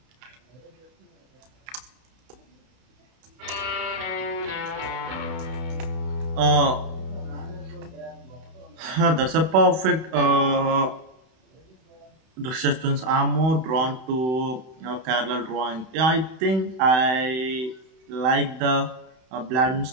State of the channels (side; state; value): left; late; 31 ms